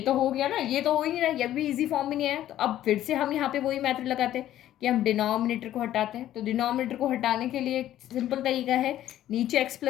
हो गया ना, ये तो हो ही नहीं रहा, ये भी इजी फॉर्म में नहीं आया। तो अब फिर से हम यहाँ पे वही मेथड लगाते हैं कि हम डिनोमिनेटर को हटाते हैं। तो डिनोमिनेटर को हटाने के लिए एक सिंपल तरीका है, नीचे x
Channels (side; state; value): right; quieter; 12.7 dB